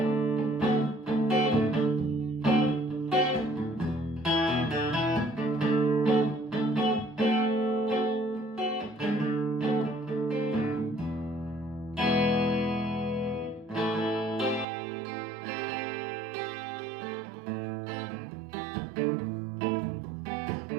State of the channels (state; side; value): drops out; left; at 14.7 s